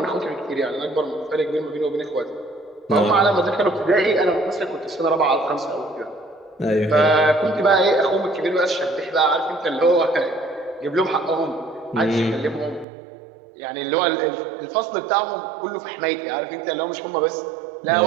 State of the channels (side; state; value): left; drops out; at 12.9 s